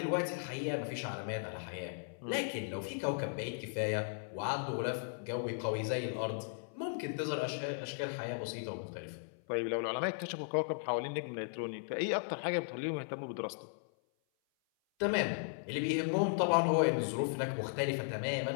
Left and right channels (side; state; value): right; silent; 53 dB below the other